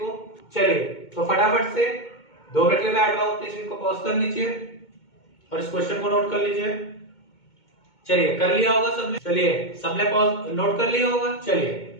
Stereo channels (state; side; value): late; right; 2.2 ms